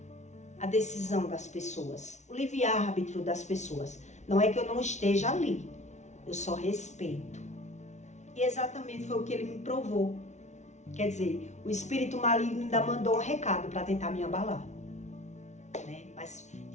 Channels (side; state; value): right; late; 0.33 ms